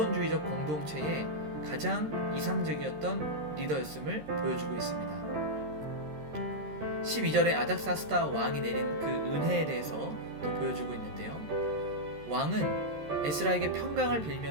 공동체의 가장 이상적이었던 리더였음을 보여주고 있습니다. 12절에 아닥사스다 왕이 내린 그 은혜에 대해서 또 보여주고 있는데요. 왕은 에스라에게 평강을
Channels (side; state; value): left; late; 13 ms